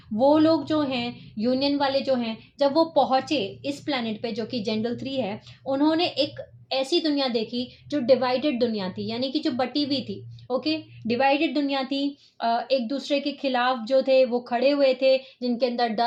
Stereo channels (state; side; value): identical; both; correlation 1.00